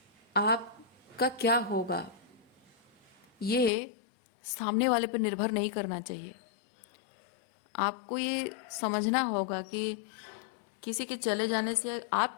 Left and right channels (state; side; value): drops out; right; at 3.7 s